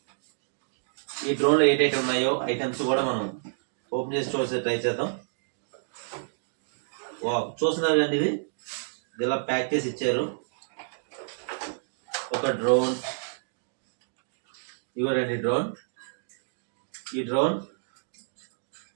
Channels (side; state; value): left; silent; digital silence